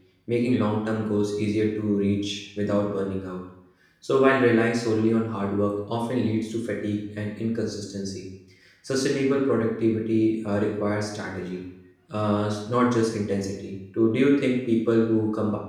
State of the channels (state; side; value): identical; both; correlation 1.00